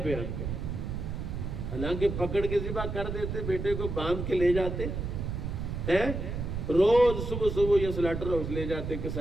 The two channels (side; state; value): right; noise; rumble, 4 dB below the sound